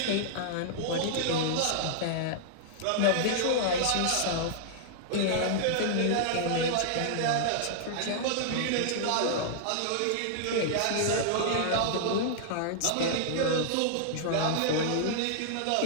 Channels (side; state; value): both; different; correlation -0.01